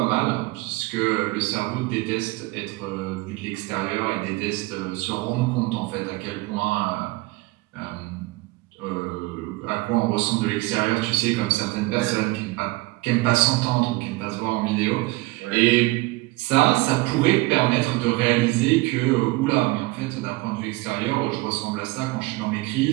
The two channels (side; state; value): left; quieter; 22.0 dB